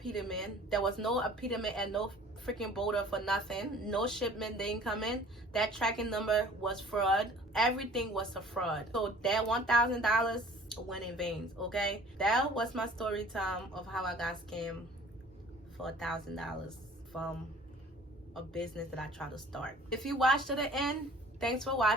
There was no apetamin and no freaking border for nothing. No shipment, they didn't come in. That tracking number was fraud. Everything was a fraud. So that $1,000 went in vain. Okay, that was my story time of how I got scammed for $1,000 from a business that I tried to start. If you watched to the end, thanks for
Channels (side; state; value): both; normal; correlation 0.49